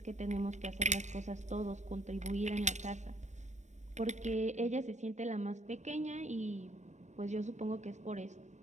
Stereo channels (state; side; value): late; left; 0.34 ms